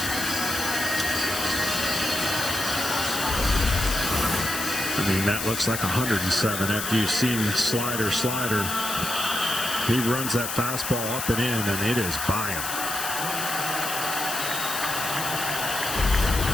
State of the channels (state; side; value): noise; left; hiss, 4 dB below the sound